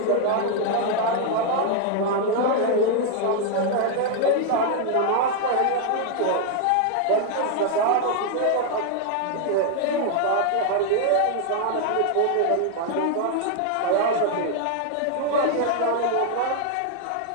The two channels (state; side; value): different; both; correlation 0.00